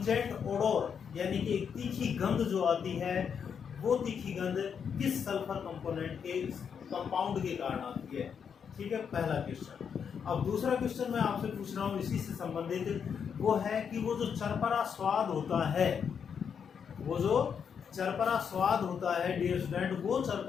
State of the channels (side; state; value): right; quieter; 7.1 dB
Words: ओडोर यानी कि एक तीखी गंध जो आती है, वो तीखी गंध किस सल्फर कंपोनेंट के कंपाउंड के कारण आती है। ठीक है, पहला क्वेश्चन। अब दूसरा क्वेश्चन मैं आपसे पूछ रहा हूँ इसी से संबंधित, वो है कि वो जो चरपरा स्वाद होता है, वो जो चरपरा स्वाद होता है डियर स्टूडेंट, वो